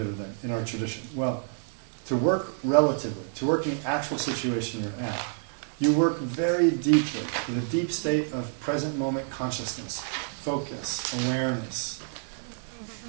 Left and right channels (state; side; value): silent; left; digital silence